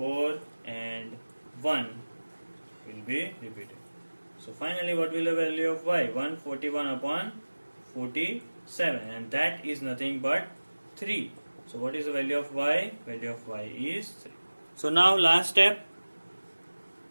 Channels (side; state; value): both; inverted; correlation -1.00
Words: and 1 will be repeated. So finally what will the value of y? 141 upon 47, and that is nothing but 3. So what is the value of y? Value of y is 3. So now last step,